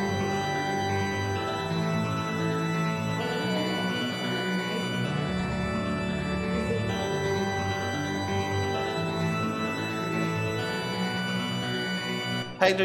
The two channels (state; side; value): identical; both; correlation 1.00